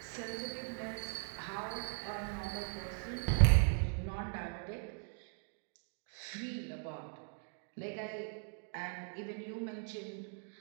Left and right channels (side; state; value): left; silent; 52 dB below the other